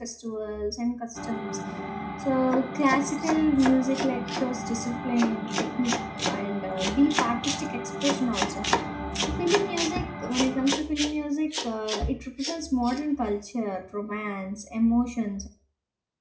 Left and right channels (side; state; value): both; identical; correlation 1.00